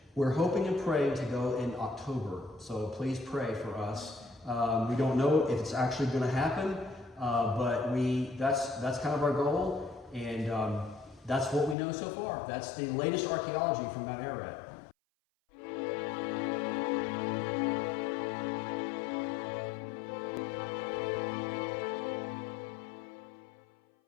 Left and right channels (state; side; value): drops out; right; at 11.8 s